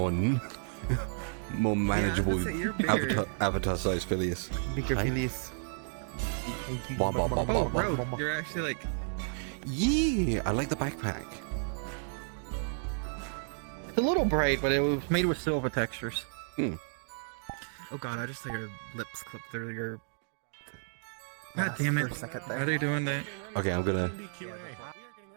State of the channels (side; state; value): left; silent; digital silence